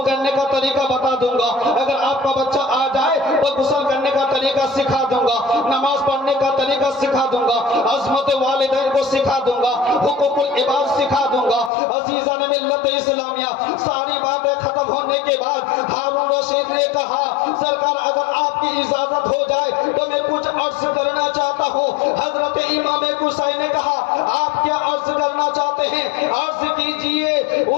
کرنے کا طریقہ بتا دوں گا. اگر آپ کا بچہ آ جائے تو غسل کرنے کا طریقہ سکھا دوں گا. نماز پڑھنے کا طریقہ سکھا دوں گا. عظمت والدین کو سکھا دوں گا. حقوق العباد سکھا دوں گا. عزیزان ملت اسلامیہ ساری باتیں ختم ہونے کے بعد ہارون رشید نے کہا سرکار اگر آپ کی اجازت ہو جائے تو میں کچھ عرض کرنا چاہتا ہوں. حضرت امام حسین نے کہا آپ کیا عرض کرنا چاہتے ہیں عرض کیجئے.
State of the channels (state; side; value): drops out; right; at 11.7 s